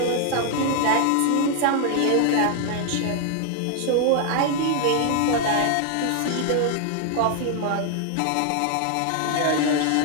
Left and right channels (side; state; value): both; different; correlation 0.00